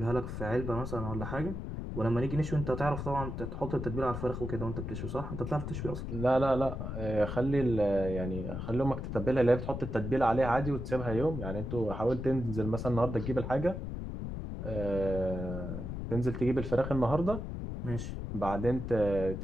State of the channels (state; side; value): noise; left; rumble, 5 dB below the sound